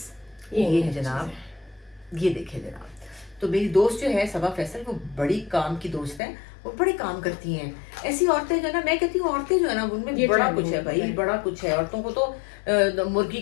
ये है जनाब, ये देखिए जनाब। तो मेरी दोस्त जो है सबा फैसल, वो बड़ी काम की दोस्त है, वो बड़े काम करती हैं। ऐसी औरतें जो है ना, मैं कहती हूँ औरतें जो है ना उनमें ये बड़ा training कुछ है भाई, है। बड़ा कुछ है। औरतों को तो मुर्गी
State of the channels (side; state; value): right; drops out; at 6.2 s